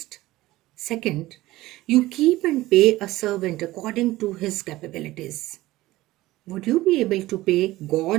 Second, you keep and pay a servant according to his capabilities. Would you be able to pay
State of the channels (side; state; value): left; quieter; 17.6 dB